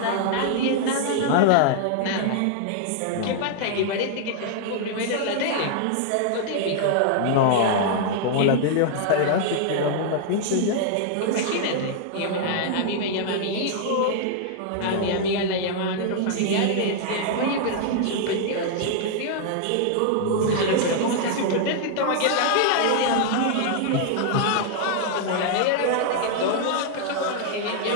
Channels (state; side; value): different; both; correlation -0.01